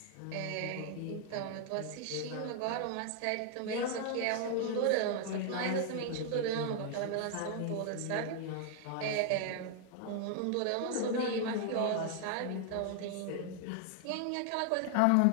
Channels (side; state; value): both; different; correlation 0.00